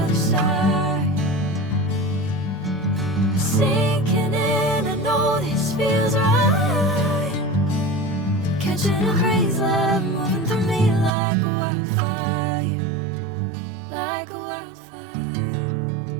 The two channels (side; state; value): left; drops out; at 11.1 s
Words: other side. Sinking in, I know this feels right. Catching a crazy love, moving through me like a wildfire, like a wildfire.